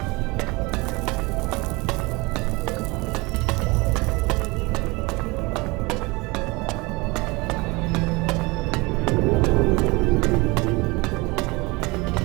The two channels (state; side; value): quieter; left; 24.9 dB